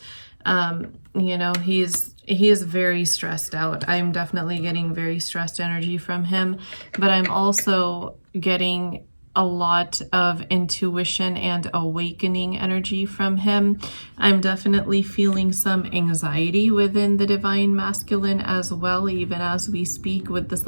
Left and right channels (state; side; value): inverted; both; correlation -1.00